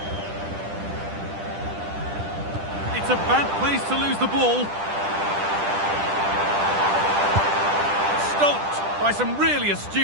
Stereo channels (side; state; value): left; late; 10 ms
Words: It's a bad place to lose the ball. Stopped by some really